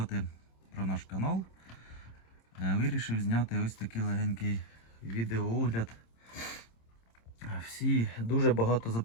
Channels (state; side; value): late; right; 26 ms